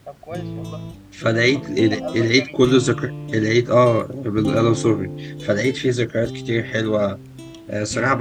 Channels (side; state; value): both; identical; correlation 1.00